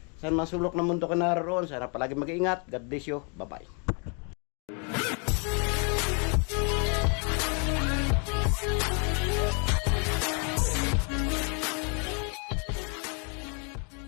Saan man sulok ng mundo ka naroon, sana palagi mag-iingat. God bless you. Bye-bye.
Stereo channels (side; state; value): right; quieter; 37.1 dB